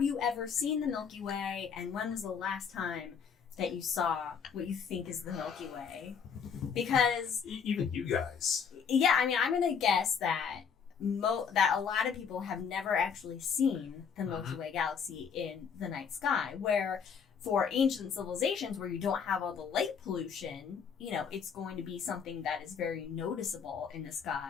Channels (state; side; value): quieter; right; 6.7 dB